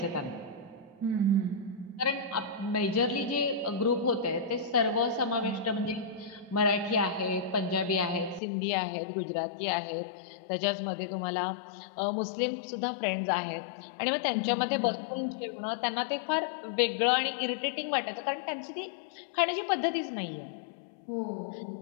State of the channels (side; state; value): right; drops out; at 8.4 s